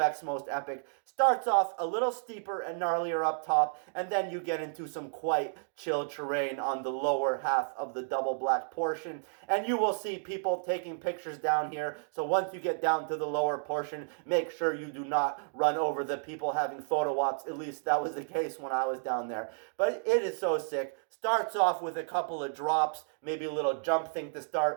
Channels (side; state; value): left; silent; digital silence